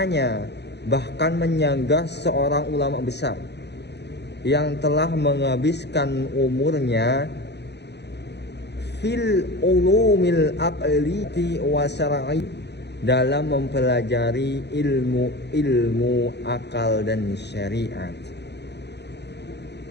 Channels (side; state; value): right; late; 0.50 ms